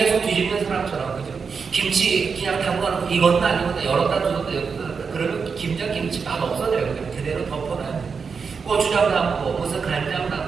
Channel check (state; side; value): quieter; left; 5.5 dB